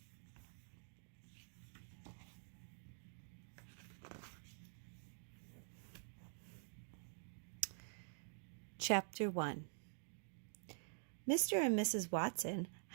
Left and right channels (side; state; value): left; silent; digital silence